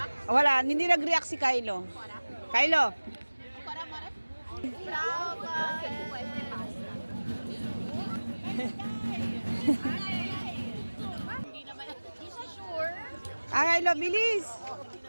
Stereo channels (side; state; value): both; inverted; correlation -1.00